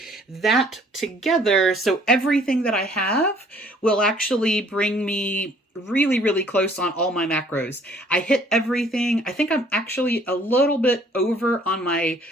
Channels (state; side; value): normal; both; correlation 0.58